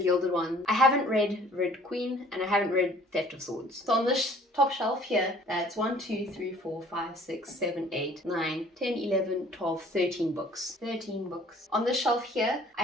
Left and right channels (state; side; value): normal; both; correlation 0.54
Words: One. I haven't read Red Queen, and I haven't read Theft of Swords. So on this top shelf here, that's 1, 2, 3, 4, 5, 6, 7, 8, 9, 10, 11, 12, 13 books. 13 books. On this shelf here, I